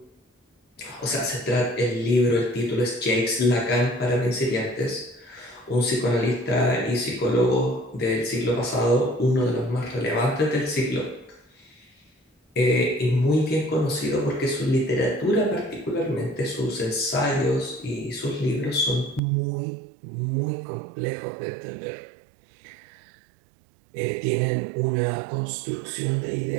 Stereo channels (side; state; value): left; drops out; at 19.2 s